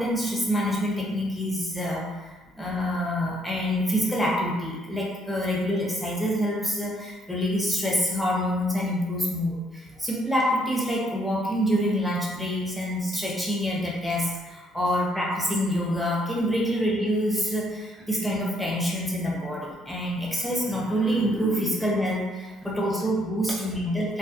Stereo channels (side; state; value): both; normal; correlation 0.70